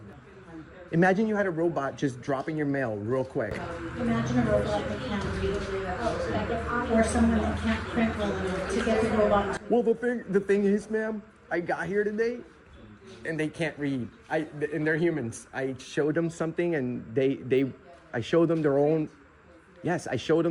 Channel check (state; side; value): identical; both; correlation 1.00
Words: Imagine you had a robot just dropping your mail real quick. Imagine a robot that can't read, or someone that can't print well enough to get the robot. Well, the thing is, ma'am, I got here today, and they can't read. And they're humans. I showed them something, and I showed them their own. Yes, I showed